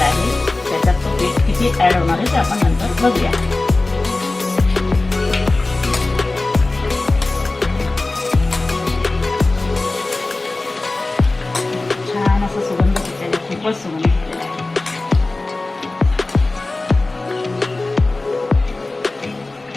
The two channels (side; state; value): right; quieter; 3.1 dB